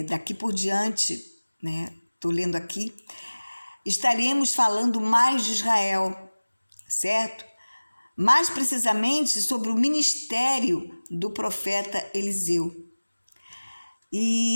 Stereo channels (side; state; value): both; inverted; correlation -1.00